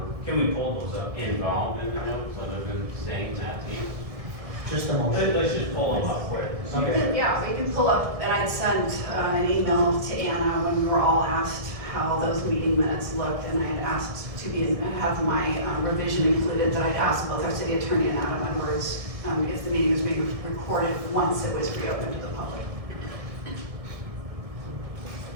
Can we pull those up? involved in the notes other than saying that to you? Just a motion. Let's just pull them up quick. Yeah, we can pull up, and I sent an email to Anna when we were all asked how those meeting minutes looked, and I had asked to have my revision included, that I'd asked both our city attorney and Adam Edwards if the meeting was being recorded once it was reopened to the public.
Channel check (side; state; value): left; late; 1.6 ms